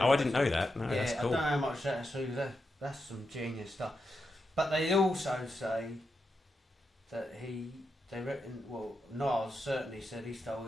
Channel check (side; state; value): both; normal; correlation 0.86